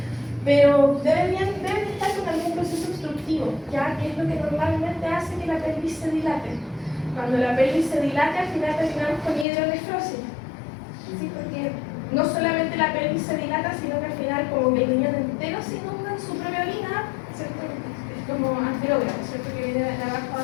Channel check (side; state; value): right; drops out; at 9.5 s